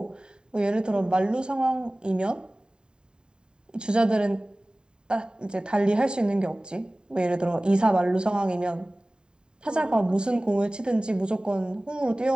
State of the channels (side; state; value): left; late; 0.048 ms